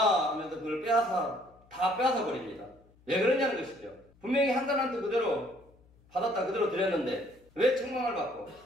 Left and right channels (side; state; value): left; noise; hum, 29 dB below the sound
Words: 하면서 그걸 다 빼앗아 버립니다. 왜 그러냐는 것이죠. 분명히 한 달란트 그대로 받았다 그대로 드렸는데 왜 책망을 받고